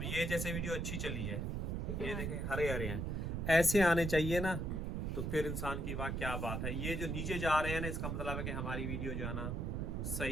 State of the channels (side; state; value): right; noise; rumble, 1 dB below the sound